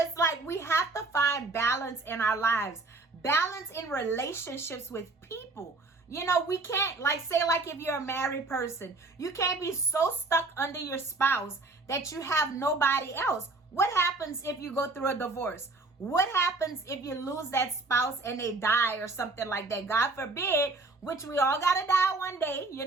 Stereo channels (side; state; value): left; quieter; 3.3 dB